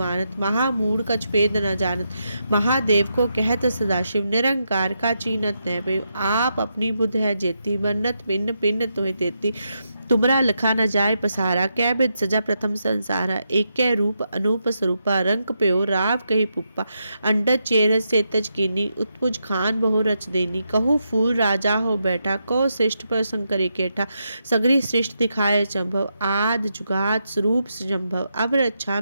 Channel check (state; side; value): inverted; both; correlation -0.83